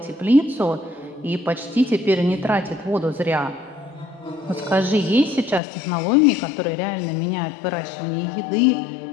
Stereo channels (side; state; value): right; drops out; at 5.6 s